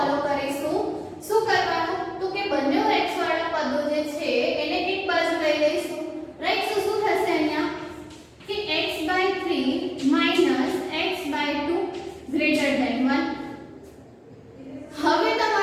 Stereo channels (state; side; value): identical; both; correlation 1.00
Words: કરીશું. શું કરવાનું તો કે બંને x વાળા પદો જે છે એને એક બાજુ લઈ લઈશું, રાઈટ. સો શું થશે અહીંયા કે x/3 x/2 ગ્રેટર ધેન 1. હવે